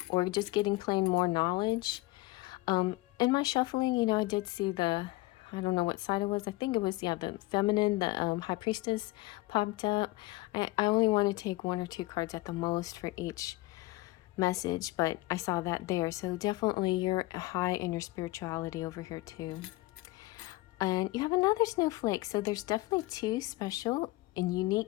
or just getting plain more knowledge. In my shuffling, I did see I don't know what side it was. I think it was, the feminine, the High Priestess popped up. I only want to take 1 or 2 cards at the most for each message, but I saw that there. So definitely you're high in your spirituality over here too. And you have another snowflake. So there's definitely 2 special and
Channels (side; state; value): right; quieter; 20.4 dB